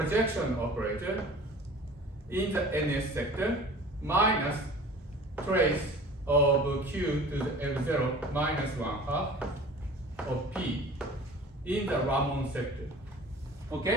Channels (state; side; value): normal; both; correlation 0.43